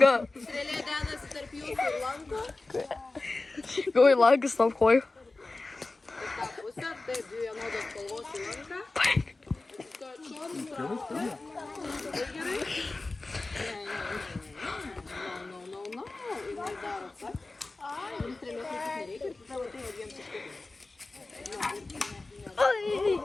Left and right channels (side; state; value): right; quieter; 3.3 dB